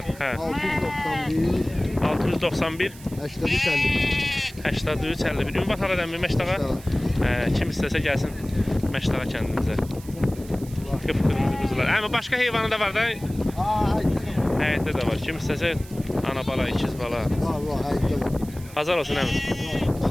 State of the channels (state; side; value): noise; right; hiss, 20 dB below the sound